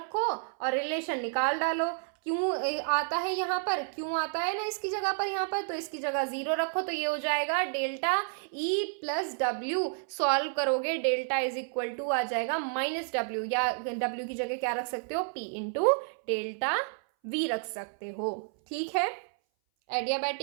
और रिलेशन निकाल डालो। क्यों आता है यहाँ पर, क्यों आता है ना इसकी जगह पर, यहाँ पर तो इसकी जगह 0 रखो, तो ये हो जाएगा delta E plus W. Solve करोगे डेल्टा इज इक्वल टू आ जाएगा माइनस डब्ल्यू, या डब्ल्यू की जगह क्या रख सकते हो, पी इंटू डेल्टा वी रख सकते हो। ठीक है,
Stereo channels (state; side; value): silent; left; 57 dB below the other